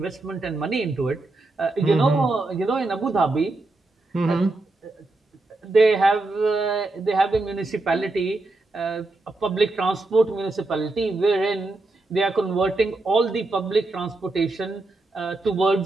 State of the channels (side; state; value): left; quieter; 3.0 dB